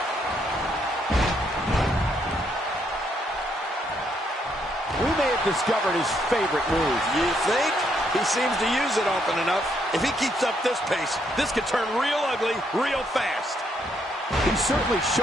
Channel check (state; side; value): normal; both; correlation 0.74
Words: We may have discovered his favorite move. You think? He seems to use it often enough. If he keeps up this pace, this could turn real ugly real fast. He's certainly